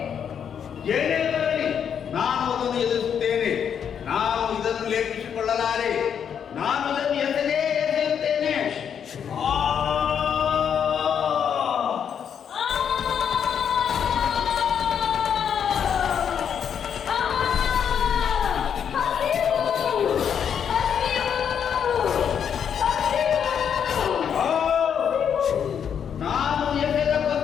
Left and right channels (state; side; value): quieter; right; 8.0 dB